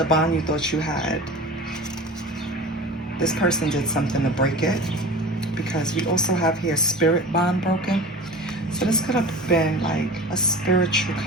bond you thought you had, this person did something to break it, because we also have here spirit bond broken. So this could have been like a spiritual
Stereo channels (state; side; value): normal; both; correlation 0.36